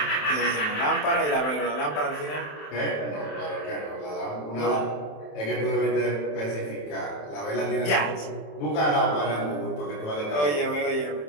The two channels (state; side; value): late; right; 27 ms